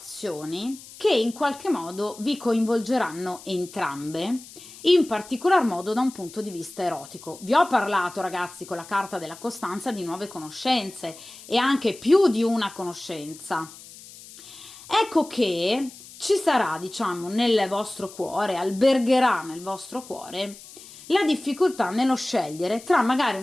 che in qualche modo vi coinvolgeranno entrambe, in particolar modo da un punto di vista erotico. Vi ho parlato ragazzi con la carta della costanza di nuove conoscenze e anche più di una conoscenza. Ecco che ci sarà, diciamo, nel vostro cuore, albergherà nel vostro cuore la difficoltà nello scegliere tra magari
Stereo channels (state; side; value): noise; left; hiss, 18 dB below the sound